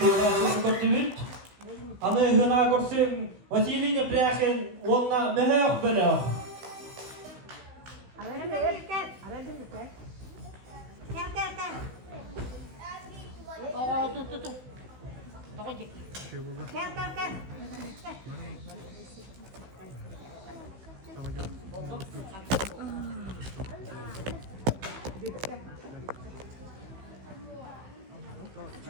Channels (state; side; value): late; left; 15 ms